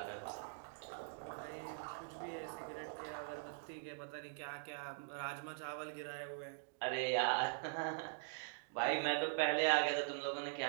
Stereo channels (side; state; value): left; silent; digital silence